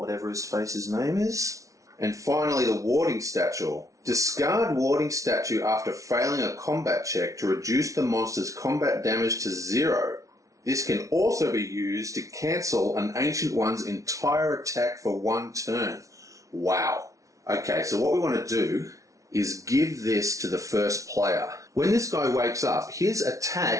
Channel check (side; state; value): left; late; 0.16 ms